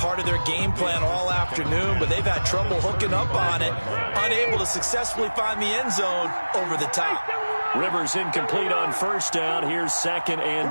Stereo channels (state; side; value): inverted; both; correlation -1.00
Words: of their game plan all afternoon, but they've had trouble hooking up on it, unable to successfully find the end zone over the top. Rivers incomplete on 1st down. Here's 2nd and